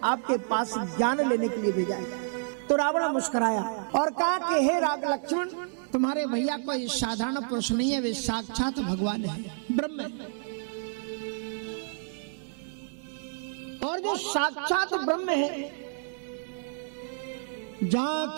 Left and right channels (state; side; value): silent; left; digital silence